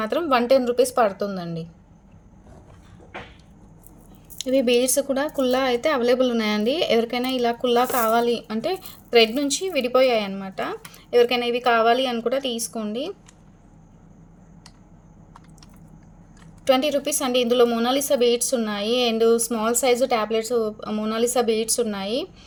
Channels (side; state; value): both; identical; correlation 1.00